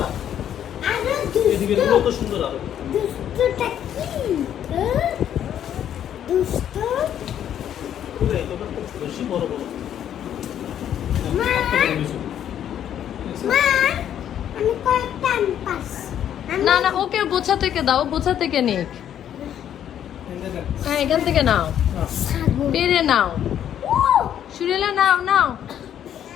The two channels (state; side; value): quieter; right; 10.1 dB